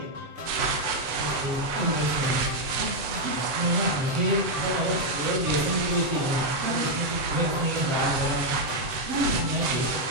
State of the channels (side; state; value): left; late; 8.0 ms